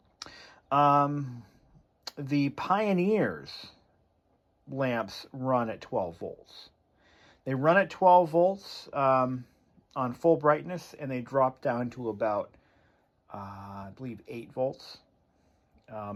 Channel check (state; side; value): identical; both; correlation 1.00